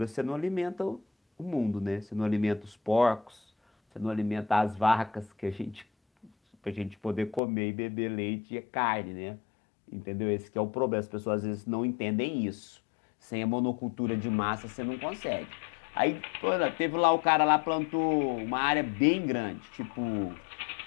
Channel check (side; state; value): right; drops out; at 7.4 s